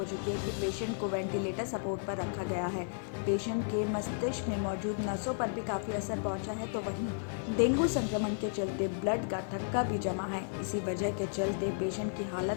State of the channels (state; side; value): silent; right; 55 dB below the other